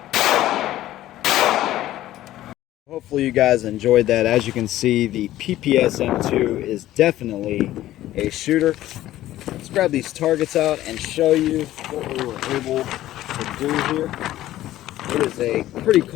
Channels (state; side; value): quieter; right; 14.3 dB